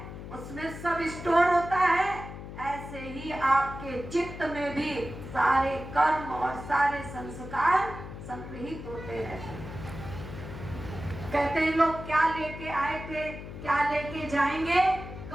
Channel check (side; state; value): left; noise; hum, 11 dB below the sound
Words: उसमें सब स्टोर होता है, ऐसे ही आपके चित्त में भी सारे कर्म और सारे संस्कार संग्रहित होते रहते हैं। कहते हैं लोग क्या लेके आए थे, क्या लेके जाएंगे?